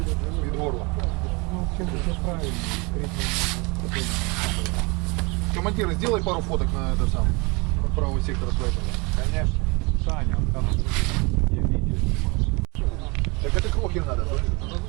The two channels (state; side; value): quieter; left; 28.2 dB